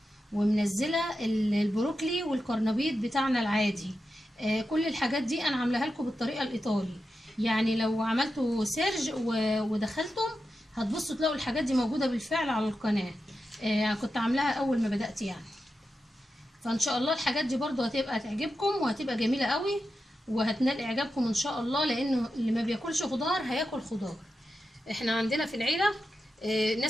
ومنزله البروكلي والكرنبيط بتاعنا العادي. كل الحاجات دي انا عاملاها لكم بالطريقه الايطالي، يعني لو عملتوا سيرج ودخلتم هتبصوا تلاقوا الحاجات دي موجوده بالفعل على القناه. كنت عاملاها اول ما بدات يعني. فان شاء الله الحاجات دي برضو هتبقى تعجبكم وهتبقى جميله قوي وهتنال اعجابكم ان شاء الله، لانه اللي ما بياكلش خضار هياكل خضار. احنا عندنا في العيله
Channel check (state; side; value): normal; both; correlation 0.90